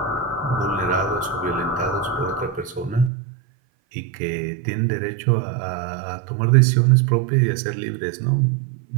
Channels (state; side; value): drops out; left; at 3.1 s